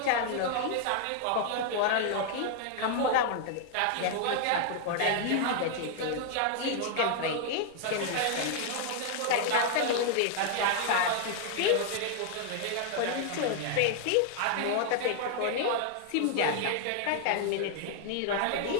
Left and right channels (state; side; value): different; both; correlation 0.00